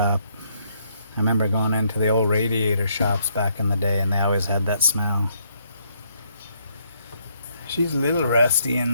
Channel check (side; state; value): both; inverted; correlation -0.71